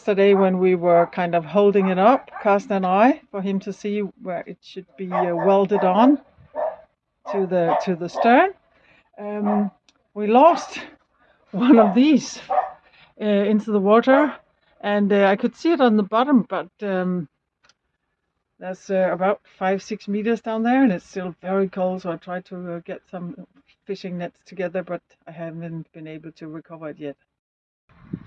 when we were kind of holding it up, Kirsten and I, for him to see where it should be welded on to the stern, we lost one of these. into the water, and I could see it on the bottom, but that's about 5-6 meters down there, and it's still very cold. So I tried to get some fishing nets together, but I haven't been able to recover it yet.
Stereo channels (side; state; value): both; identical; correlation 1.00